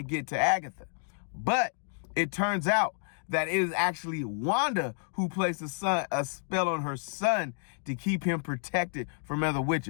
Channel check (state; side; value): silent; right; 58 dB below the other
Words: get to Agatha. But it turns out that it is actually Wanda who placed a spell on her son to keep him protected from other